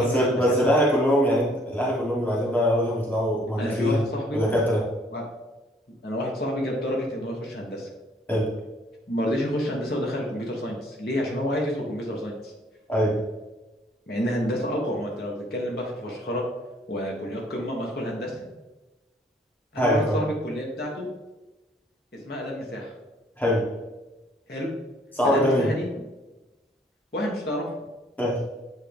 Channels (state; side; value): normal; both; correlation 0.61